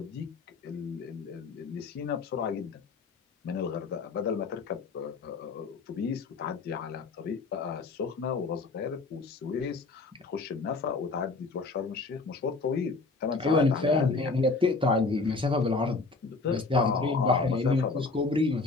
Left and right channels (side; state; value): right; quieter; 3.9 dB